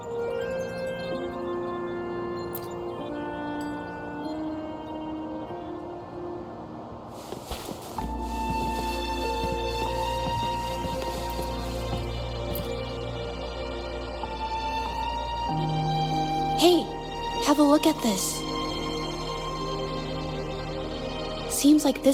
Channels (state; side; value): identical; both; correlation 1.00